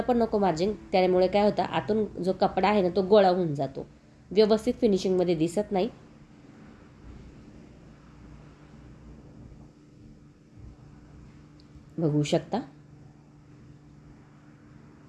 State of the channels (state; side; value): identical; both; correlation 1.00